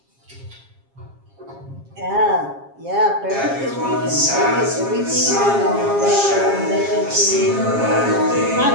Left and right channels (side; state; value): left; late; 7.4 ms